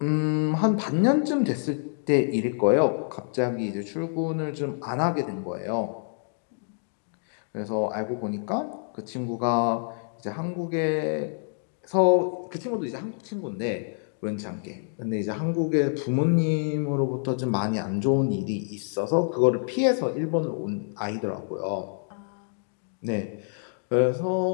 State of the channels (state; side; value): silent; right; digital silence